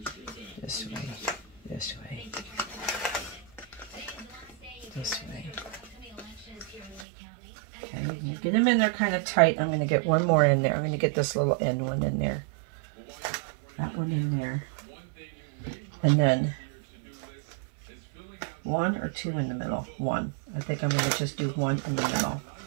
This way. This way. This way. Okay, get them in there kind of tight. I'm going to get one more in there. I'm going to get this little end one in there. That one in there. And then 1 or 2 in the middle. 1. I think I'm going to just do 1 in the middle.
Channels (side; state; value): left; drops out; at 7.1 s